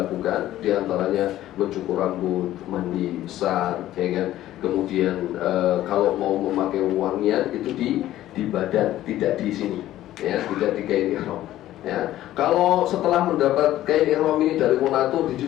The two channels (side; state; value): right; quieter; 13.9 dB